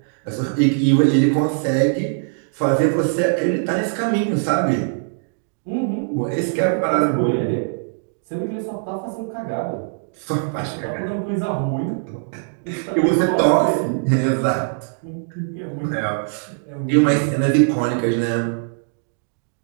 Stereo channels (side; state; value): left; silent; digital silence